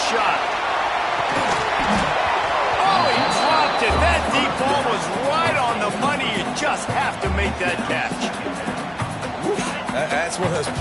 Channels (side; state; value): both; identical; correlation 1.00